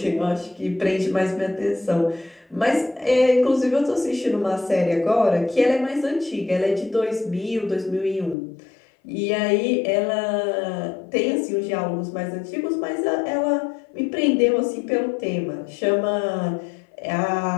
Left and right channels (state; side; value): drops out; right; at 8.3 s